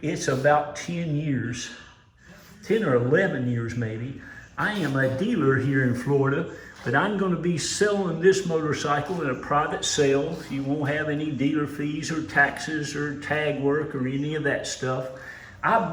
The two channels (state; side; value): identical; both; correlation 1.00